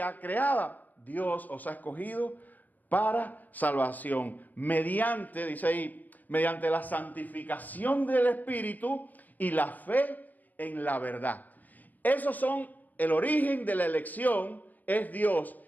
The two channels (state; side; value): late; right; 0.082 ms